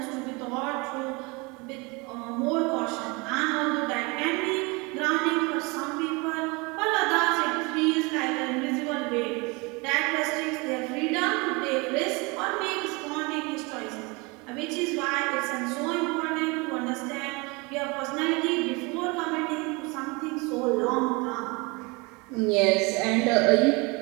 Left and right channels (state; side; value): quieter; left; 27.2 dB